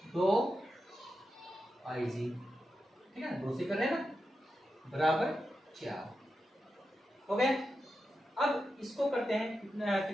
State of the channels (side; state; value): both; normal; correlation 0.89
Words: 2 IG, ठीक है, 2 से कर रहे हैं ना, बराबर 4 हो गए। अब इसको करते हैं